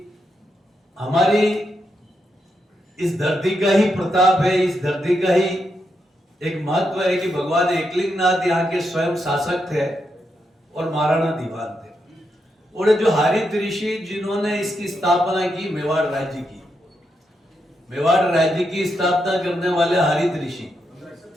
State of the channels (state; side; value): normal; both; correlation 0.83